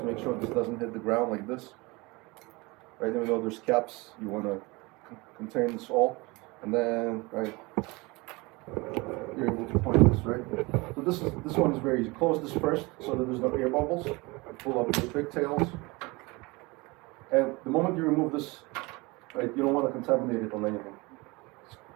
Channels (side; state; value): left; quieter; 24.7 dB